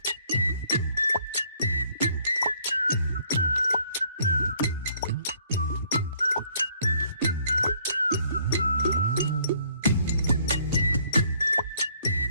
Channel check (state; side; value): inverted; both; correlation -0.63